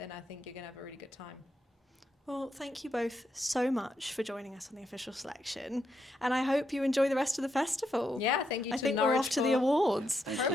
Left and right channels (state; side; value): normal; both; correlation 0.81